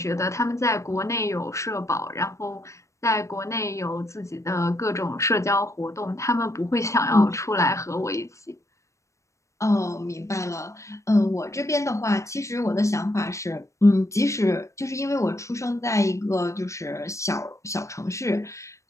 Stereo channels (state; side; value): late; right; 0.15 ms